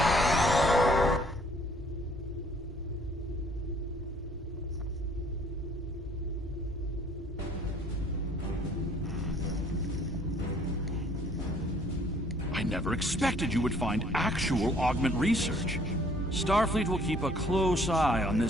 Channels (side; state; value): both; normal; correlation 0.59